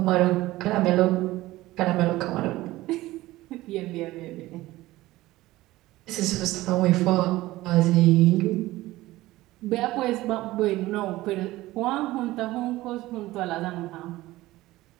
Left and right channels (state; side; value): quieter; left; 17.5 dB